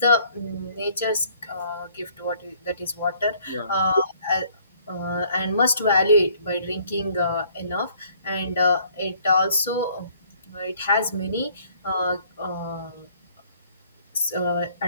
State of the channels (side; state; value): both; inverted; correlation -0.60